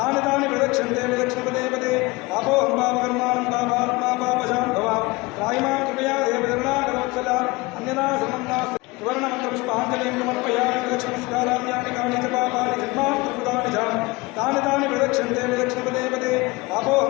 तानि प्रदक्षन्ते विलक्ष्मपदे पदे पापोऽहं पापकर्माणं पापात्मा पापशां भवां त्रायिमां कृपया देवचरणाकरोत्सला अन्यदा समं नास्ति सुवर्णमन्त्रपुष्पाञ्जलिं समर्पयामि लक्ष्मणस्काराम्यानि कानि च पापानि जन्मान्तर्कृतानि च तानि तानि प्रदक्षन्ते विलक्ष्मपदे पदे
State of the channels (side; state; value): right; quieter; 23.0 dB